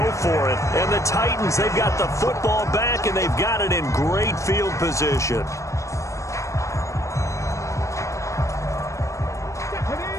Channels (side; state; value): right; late; 0.15 ms